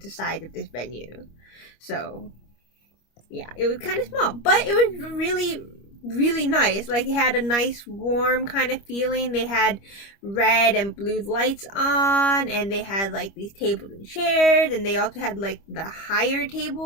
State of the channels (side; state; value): right; late; 25 ms